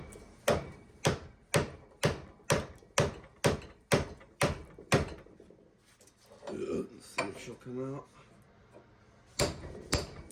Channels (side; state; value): both; identical; correlation 1.00